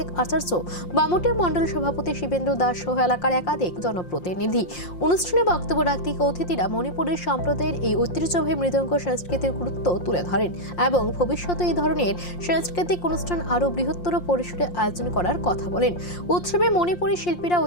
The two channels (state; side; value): late; right; 5.7 ms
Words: আচার্য, বামুটিয়া মন্ডল সভাপতি শিবেন্দ্র দাস সহ এলাকার একাধিক জনপ্রতিনিধি। অনুষ্ঠানে বক্তব্য রাখতে অতিথিরা মণিপুরের সম্প্রদায়ের এই ঐতিহ্যবাহী মৃদঙ্গ সংস্কৃতির গুরুত্ব তুলে ধরেন এবং ভবিষ্যতে এই ধরনের সাংস্কৃতিক অনুষ্ঠান আরও বৃহত্তর পরিসরে আয়োজন করার কথা বলেন। উৎসবে মণিপুরী শিল্পীরা